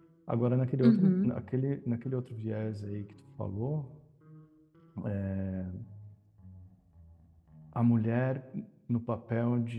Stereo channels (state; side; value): identical; both; correlation 1.00